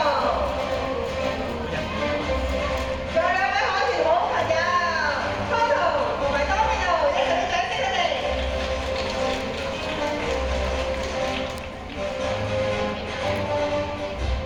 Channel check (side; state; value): both; identical; correlation 1.00